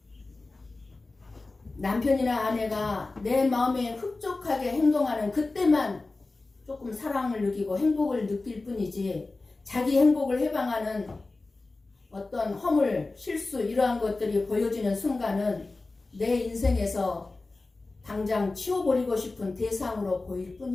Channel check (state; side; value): quieter; right; 3.4 dB